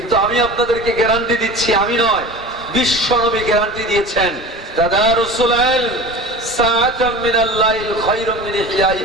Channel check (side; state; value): both; normal; correlation 0.36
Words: আমি আপনাদেরকে গ্যারান্টি দিচ্ছি, আমি নয়, বিশ্ব নবী গ্যারান্টি দিয়েছেন, তাদারুসুল ইলম সাআতাম মিনাল লাইল খায়রুম মিন